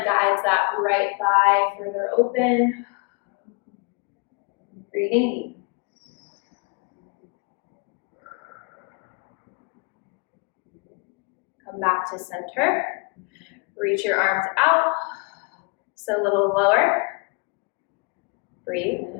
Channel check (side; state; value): right; quieter; 32.0 dB